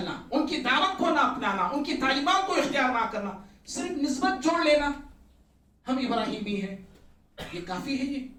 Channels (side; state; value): both; identical; correlation 1.00